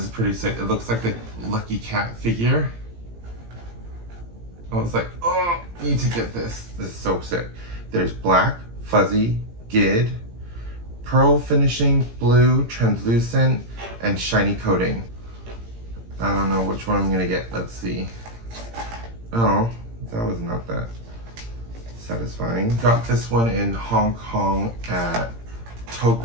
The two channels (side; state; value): left; late; 17 ms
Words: is pretty sick. It looks like the Lucky Cat figure. I was like, oh, need to get this. This is so sick. There's black, fuzzy, gid, pearl finishing, blue, translucent, and shiny coating. I don't know which one I'm gonna get. Let's see. Oh, that was not that satisfying. Got this one in Hong Kong at